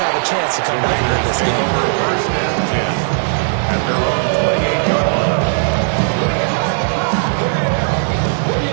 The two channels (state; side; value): silent; left; 69 dB below the other